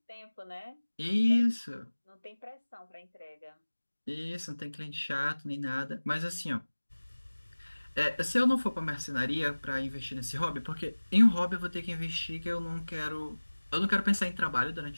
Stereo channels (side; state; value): both; inverted; correlation -1.00